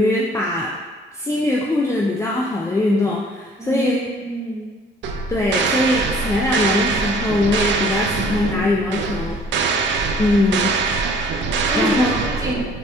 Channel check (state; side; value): normal; both; correlation 0.55